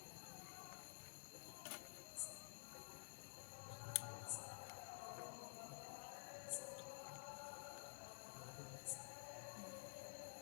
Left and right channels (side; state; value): right; silent; digital silence